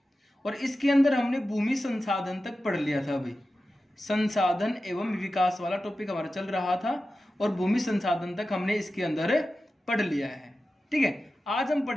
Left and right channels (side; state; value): both; normal; correlation 0.93